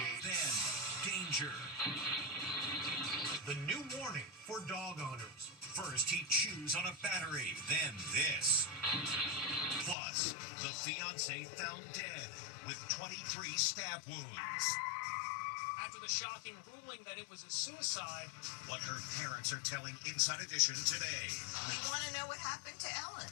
Then, danger. The new warning for dog owners. First, he chews on a battery, then this. Plus, the fiancé found dead with 23 stab wounds. After the shocking ruling that it was a suicide. What her parents are telling Inside Edition today. We want to know what happened to Ellen.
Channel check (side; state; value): right; drops out; at 10.0 s